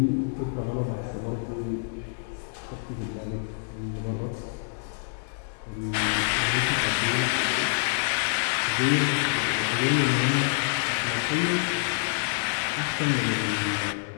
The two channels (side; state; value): right; silent; digital silence